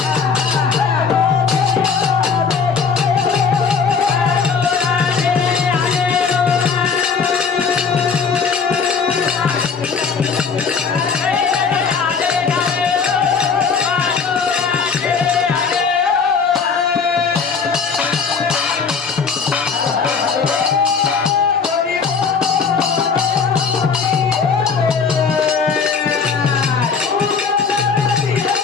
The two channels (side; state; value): right; quieter; 5.7 dB